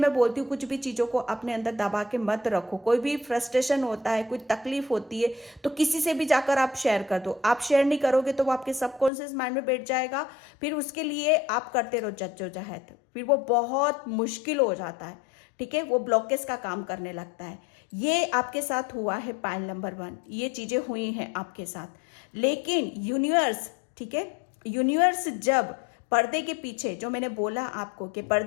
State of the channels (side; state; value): right; drops out; at 9.1 s